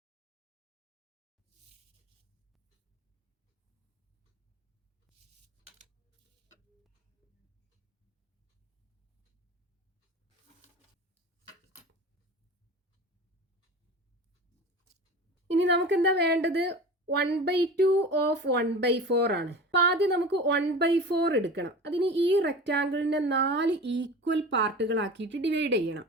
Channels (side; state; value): both; normal; correlation 0.34